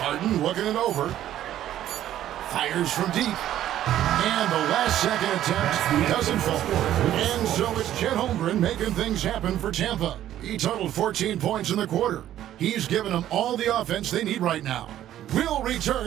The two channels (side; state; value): left; quieter; 12.2 dB